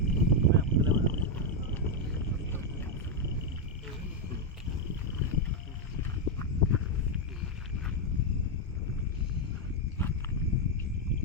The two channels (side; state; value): both; normal; correlation 0.02